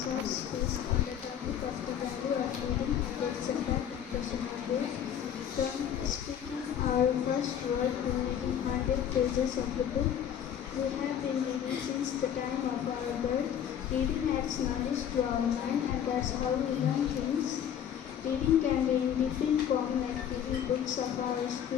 short speech on the topic of the value of reading and its impact on personal growth. From speaking our first word to reading 100 pages of the book, we have been reading since the time of our birth. Reading adds knowledge to our mind, and that's how we learn things. Reading can be in different forms, like reading books of our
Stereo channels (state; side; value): quieter; right; 9.3 dB